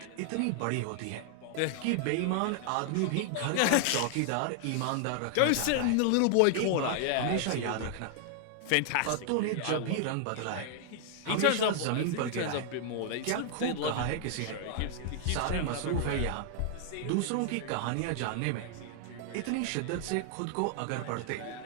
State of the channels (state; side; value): different; both; correlation 0.00